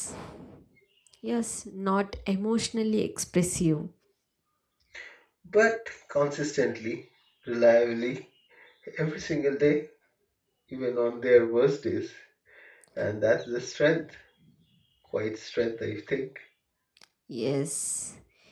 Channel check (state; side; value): identical; both; correlation 1.00